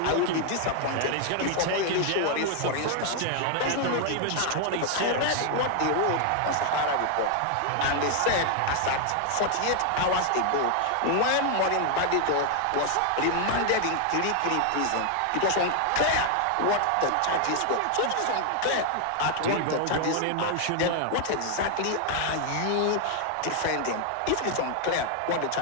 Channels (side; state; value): both; different; correlation 0.00